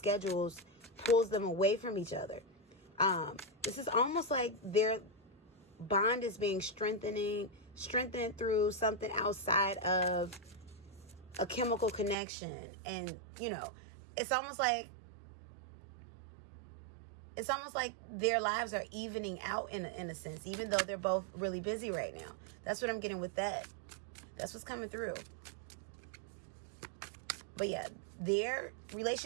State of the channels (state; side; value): drops out; left; at 12.2 s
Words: pulls them away from each other. This is almost like their bond is being strengthened through something outside of a chemical connection. And, you know, it's almost like their lives are evening out in a sense, even though they're both really busy right now. That's what I'm getting with that. That's what's coming through. But yeah, their